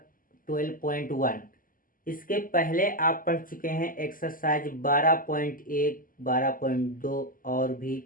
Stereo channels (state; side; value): late; right; 0.41 ms